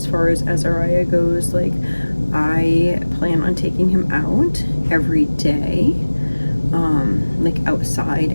far as Azariah goes, like, I plan on taking him out every day, like outside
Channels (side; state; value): both; inverted; correlation -1.00